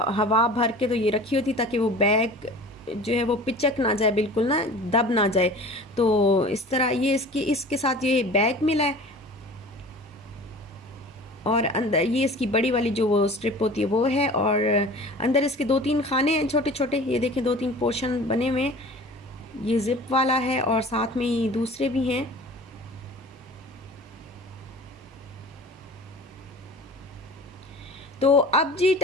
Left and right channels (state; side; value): normal; both; correlation 0.41